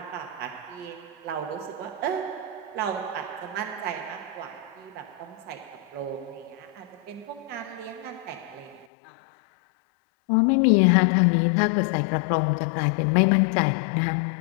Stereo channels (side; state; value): right; drops out; at 8.8 s